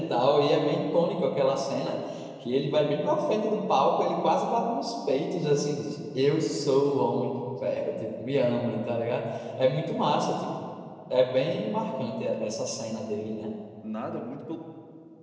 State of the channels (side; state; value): both; identical; correlation 1.00